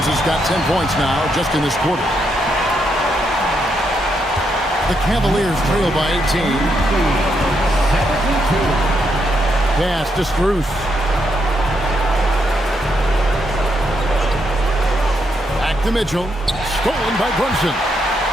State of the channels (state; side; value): normal; both; correlation 0.78